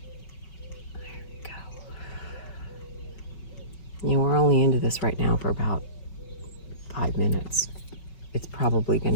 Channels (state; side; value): late; right; 5.3 ms